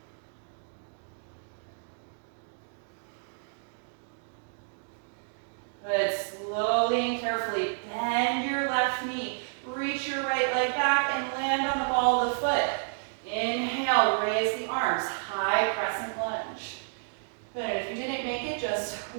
Good, slowly and carefully bend your left knee. Reach your right leg back and land on the ball of the foot. Inhale, raise the arms, high crescent lunge. Good, and if you didn't make it, just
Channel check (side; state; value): left; silent; digital silence